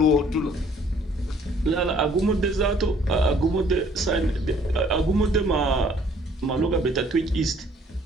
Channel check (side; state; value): both; normal; correlation 0.60